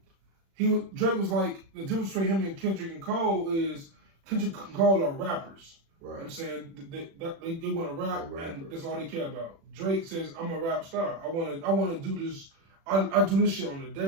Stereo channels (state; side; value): late; left; 36 ms